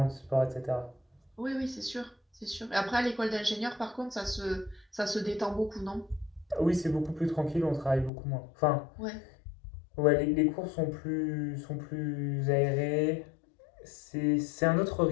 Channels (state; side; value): drops out; right; at 8.1 s